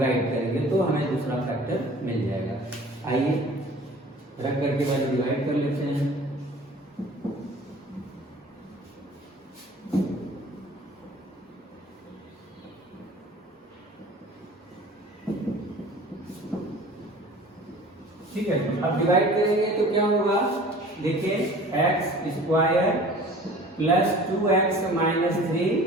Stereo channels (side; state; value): both; normal; correlation 0.46